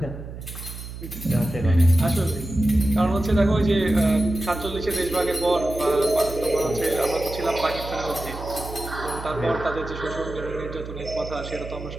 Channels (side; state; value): right; noise; hum, 11 dB below the sound